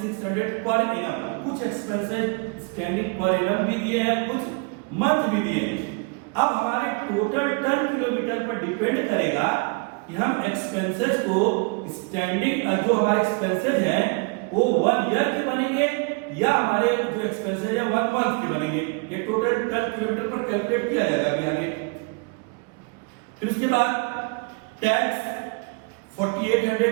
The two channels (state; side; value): quieter; left; 31.7 dB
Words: per annum. कुछ एक्सपेंसेस स्टैंडिंग पर एनम भी दिए हैं, कुछ मंथ भी दिए हैं। अब हमारे टोटल टन किलोमीटर पर डिपेंड करेगा कि हम एक्सपेंसेस को स्टैंडिंग, जो हमारे एक्सपेंसेस हैं वो 1 ईयर के बनेंगे या हमारे जो एक्सपेंसेस है 1 मंथ के बनेंगे। ये टोटल टन किलोमीटर पर कैलकुलेट किया जाएगा अभी आगे। फिर उसके बाद tax